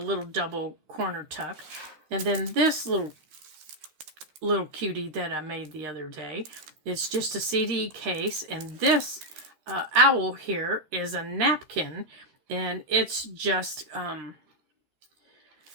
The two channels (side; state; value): left; late; 13 ms